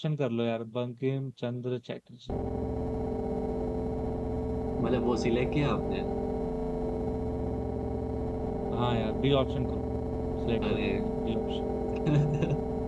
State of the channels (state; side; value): identical; both; correlation 1.00